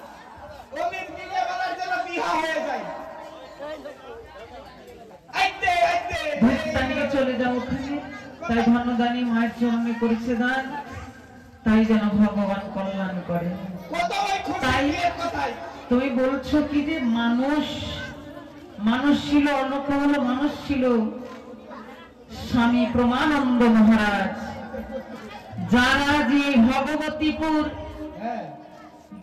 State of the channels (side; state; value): both; identical; correlation 1.00